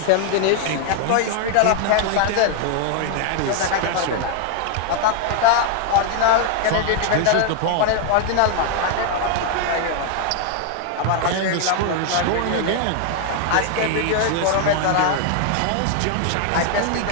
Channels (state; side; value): different; both; correlation 0.00